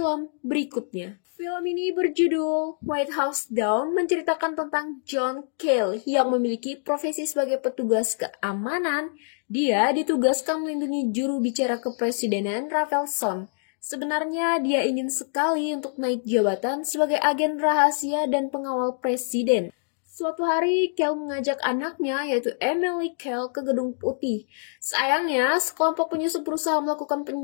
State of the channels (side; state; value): right; silent; digital silence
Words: berikutnya. Film ini berjudul White House Down, menceritakan tentang John Cale yang memiliki profesi sebagai petugas keamanan. Dia ditugaskan melindungi juru bicara kepresidenan Rafelson. Sebenarnya dia ingin sekali untuk naik jabatan sebagai agen rahasia dan pengawal presiden. Suatu hari, Cale mengajak anaknya, yaitu Emily Cale, ke Gedung Putih. Sayangnya, sekelompok penyusup berusaha melakukan